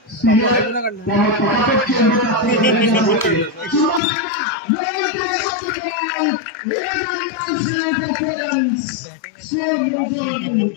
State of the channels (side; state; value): right; drops out; at 4.0 s